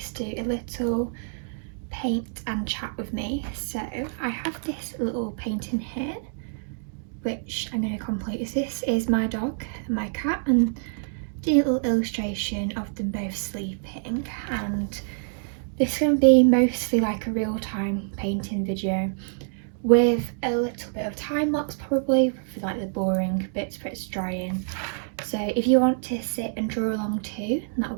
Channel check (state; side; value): silent; left; digital silence